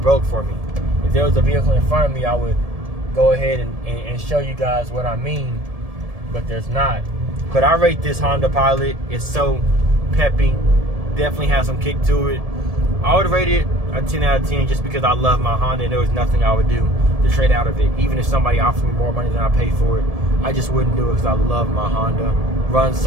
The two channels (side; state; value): left; late; 1.7 ms